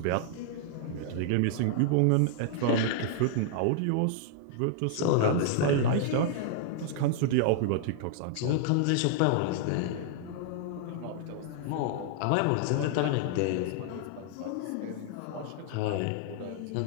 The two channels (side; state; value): both; different; correlation -0.01